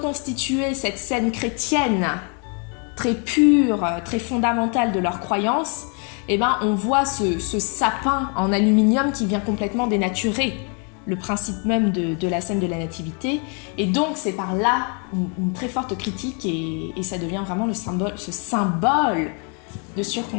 cette scène chrétienne très pure, très fondamentale de leur croyance, eh ben, on voit ce sapin en aluminium qui vient complètement dénaturer le principe même de la scène de la nativité. Et donc, c'est par là une très forte critique et ça devient vraiment ce symbole de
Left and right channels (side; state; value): right; quieter; 38.1 dB